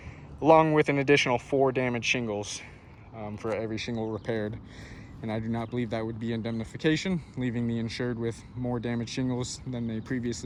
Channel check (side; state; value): both; identical; correlation 1.00